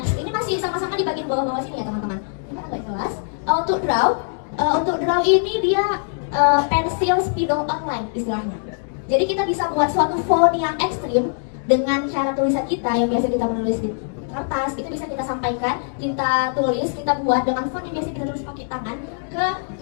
Ini masih sama-sama di bagian bawah-bawah sini ya teman-teman. Ini agak jelas. Untuk draw ini dia pensil spidol online istilahnya. Jadi kita bisa buat suatu font yang ekstrim dengan cara tulisan kita yang biasa kita menulis di kertas. Itu bisa kita sampaikan, kita tulis, kita buat dengan font yang biasa kita tulis pakai tangan ke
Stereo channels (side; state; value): right; silent; digital silence